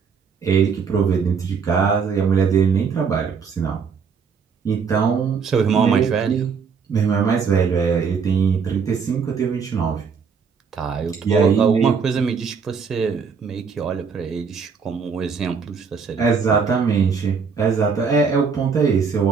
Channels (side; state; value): left; quieter; 5.9 dB